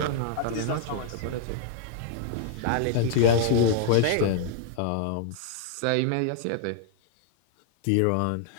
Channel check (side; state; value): both; different; correlation -0.01